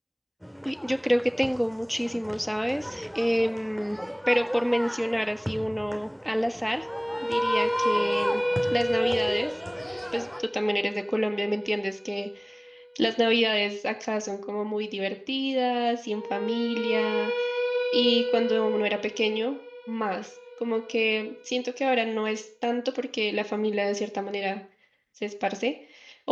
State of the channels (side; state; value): both; identical; correlation 1.00